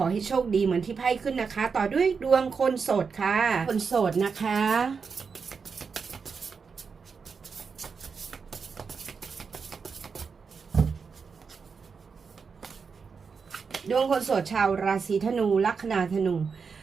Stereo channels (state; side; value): quieter; left; 5.5 dB